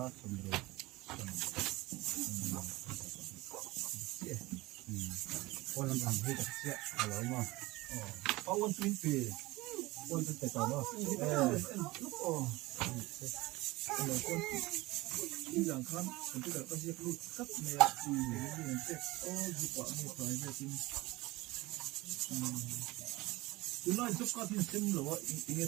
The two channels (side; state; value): left; quieter; 20.5 dB